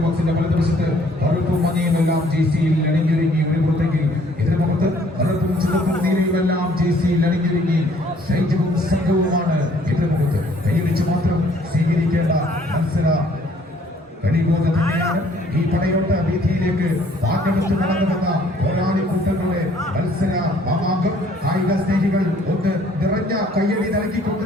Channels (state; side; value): normal; both; correlation 0.60